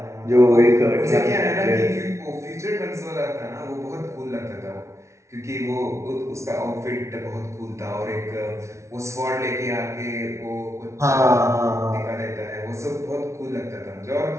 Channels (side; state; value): left; late; 0.14 ms